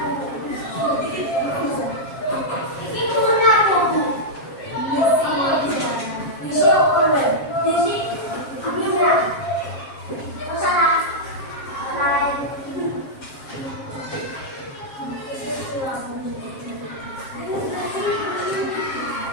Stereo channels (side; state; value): right; late; 7.5 ms